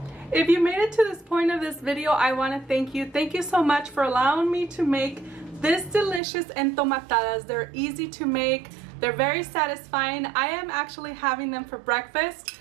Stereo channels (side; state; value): left; drops out; at 6.2 s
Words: If you made it to this point of this video, I want to thank you. Thank you so much for allowing me to make this delicious entomatadas. They're easy to make. They're very satisfying. I am actually having them for breakfast.